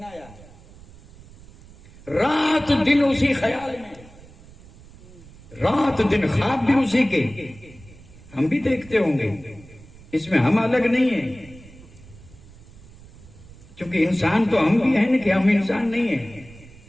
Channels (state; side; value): noise; right; rumble, 21 dB below the sound